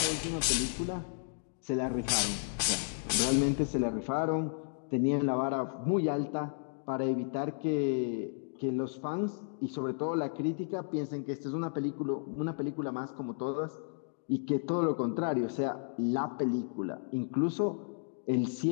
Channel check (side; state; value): right; silent; digital silence